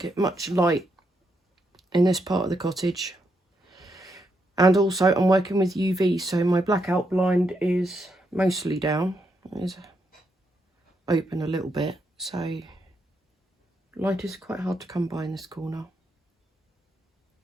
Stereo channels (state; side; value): normal; both; correlation 0.80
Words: much light in this part of the cottage. And also I'm working with UV, so my blackout blind is mostly down. It is open a little bit, so light is quite hard to come by in this corner.